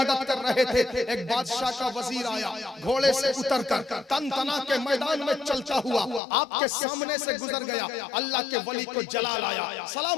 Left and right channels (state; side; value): drops out; right; at 6.2 s